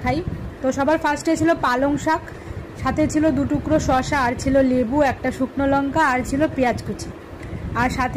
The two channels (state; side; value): identical; both; correlation 1.00